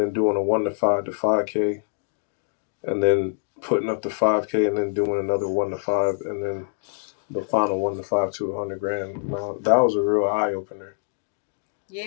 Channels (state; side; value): silent; right; digital silence